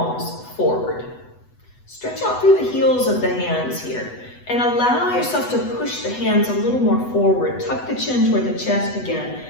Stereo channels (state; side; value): late; right; 8.1 ms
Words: forward. Stretch out through the heels of the hands here and allow yourself to push the hands a little more forward. Tuck the chin toward the chest again